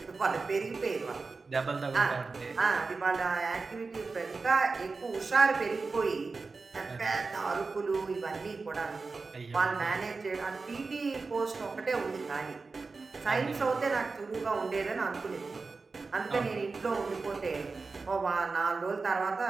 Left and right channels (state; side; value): quieter; left; 4.1 dB